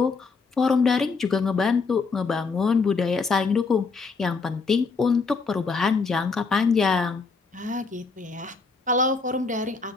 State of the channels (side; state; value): right; quieter; 4.5 dB